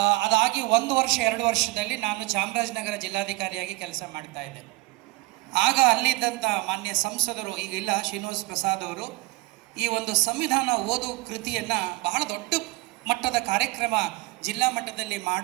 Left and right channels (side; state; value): left; quieter; 21.8 dB